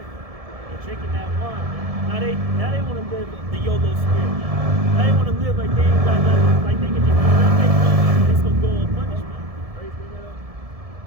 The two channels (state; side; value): late; left; 1.7 ms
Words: They're drinking that wine, man. Now they want to live the YOLO spirit, man. Now they want to live like they ain't got nothing, like they can just do whatever they want, and it's gonna go unpunished, man. Right? Bring that up.